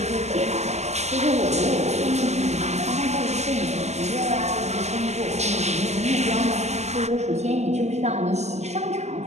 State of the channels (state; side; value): late; left; 0.33 ms